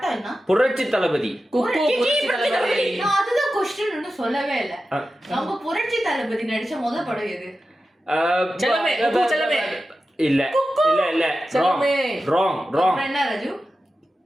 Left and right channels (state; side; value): normal; both; correlation 0.92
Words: என்ன? புரட்சி தளபதி. குக்கு புரட்சி தலைவரே. நான் அதுதான் கொஸ்டின் சொல்லவே இல்ல. நம்ம புரட்சி தளபதி நடிச்ச முதல் படம் எது? செல்லமே, குக்கு செல்லமே. இல்ல இல்ல இல்ல செல்லமே. Wrong wrong. அப்புறம் என்ன ராஜு?